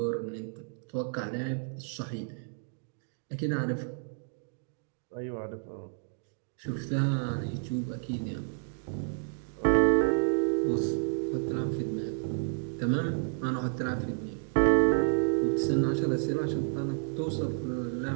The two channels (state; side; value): silent; left; digital silence